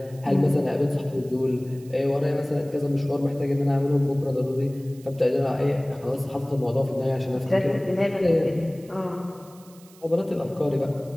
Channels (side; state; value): right; noise; hiss, 25 dB below the sound